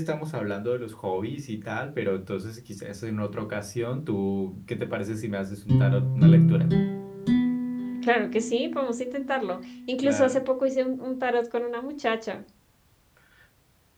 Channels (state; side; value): identical; both; correlation 1.00